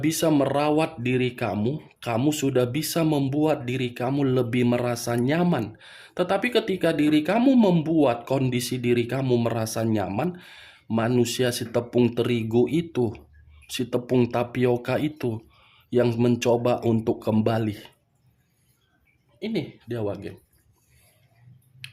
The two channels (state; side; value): identical; both; correlation 1.00